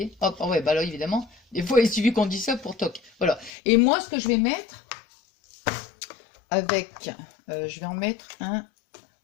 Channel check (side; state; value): right; drops out; at 3.5 s